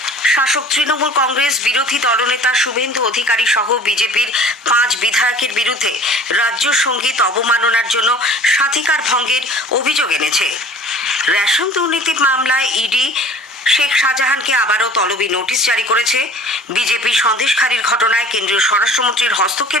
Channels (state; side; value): normal; both; correlation 0.47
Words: শাসক তৃণমূল কংগ্রেস বিরোধী দলনেতা শুভেন্দু অধিকারী সহ বিজেপির 5 বিধায়কের বিরুদ্ধে রাজ্য সঙ্গীত অবমাননার জন্য স্বাধিকার ভঙ্গের অভিযোগ এনেছে। রেশন দুর্নীতি মামলায় ইডি শেখ শাহজাহানকে আবারও তলবি নোটিশ জারি করেছে। বিজেপি সন্দেশখালীর ঘটনায় কেন্দ্রীয় স্বরাষ্ট্রমন্ত্রীর